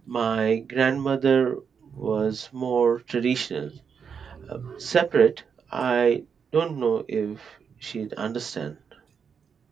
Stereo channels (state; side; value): quieter; left; 6.6 dB